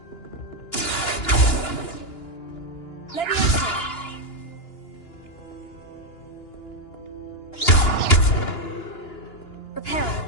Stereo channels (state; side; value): late; right; 2.9 ms